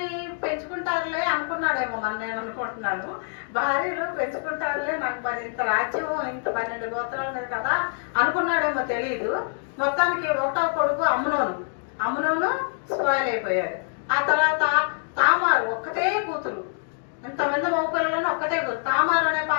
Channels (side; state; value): right; silent; 62 dB below the other